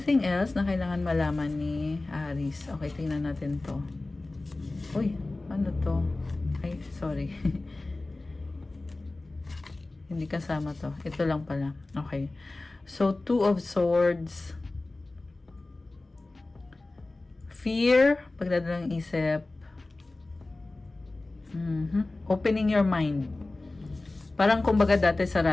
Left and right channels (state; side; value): quieter; right; 3.0 dB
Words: else na kailangan malaman ni Aries? Okay, tingnan natin to. Uy, ano to? Ay, sorry. Hindi kasama to. Ito lang pala. Okay. So, Two of Swords. Fear, pagdadalang isip. Opening your mind. Parang kumbaga dati